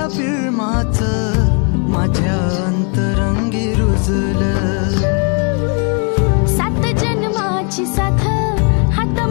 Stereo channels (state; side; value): quieter; right; 39.2 dB